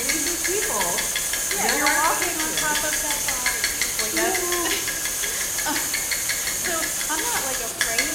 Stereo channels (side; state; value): both; identical; correlation 1.00